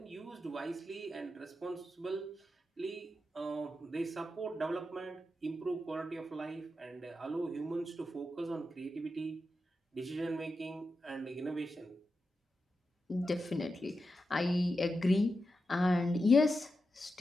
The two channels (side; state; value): both; normal; correlation 0.89